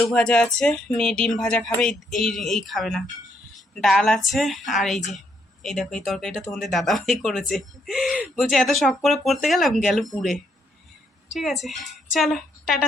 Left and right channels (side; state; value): both; normal; correlation 0.74